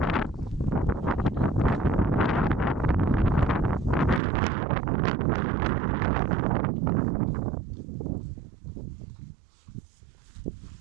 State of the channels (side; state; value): left; drops out; at 4.2 s